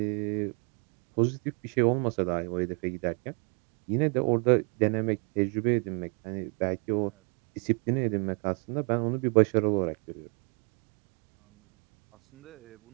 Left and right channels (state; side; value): quieter; left; 36.5 dB